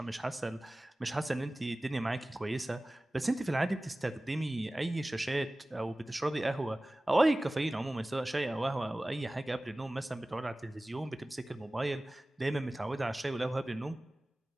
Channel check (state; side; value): normal; both; correlation 0.98